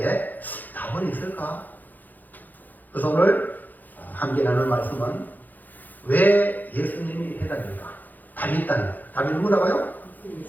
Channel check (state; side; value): late; right; 0.084 ms